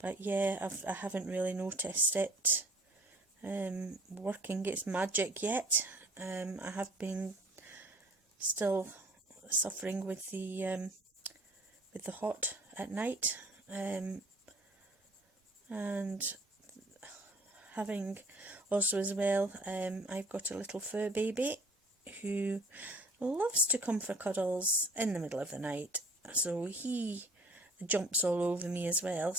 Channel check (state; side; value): normal; both; correlation 0.51